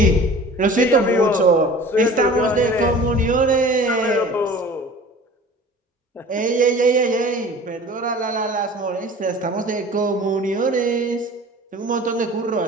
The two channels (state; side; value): normal; both; correlation 0.43